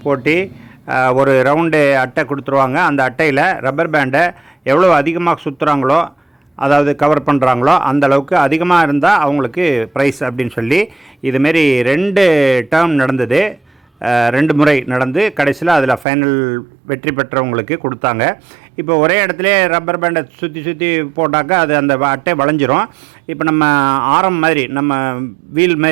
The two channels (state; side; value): drops out; left; at 16.1 s